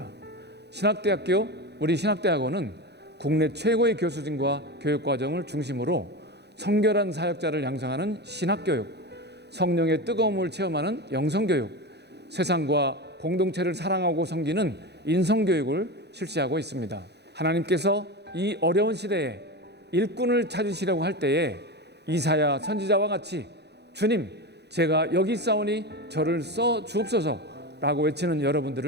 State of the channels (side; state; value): left; late; 0.49 ms